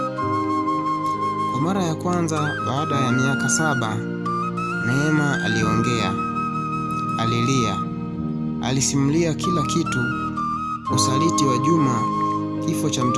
Kwa mara ya kwanza baada ya miaka 7, Neema aliongea. Alilia. Alisimulia kila kitu: usaliti wa Juma, kifo cha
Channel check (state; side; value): identical; both; correlation 1.00